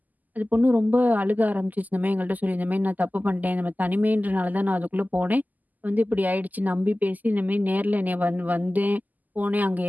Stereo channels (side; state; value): left; late; 0.082 ms